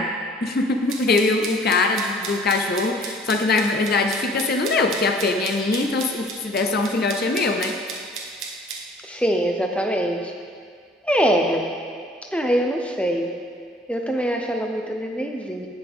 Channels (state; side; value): normal; both; correlation 0.54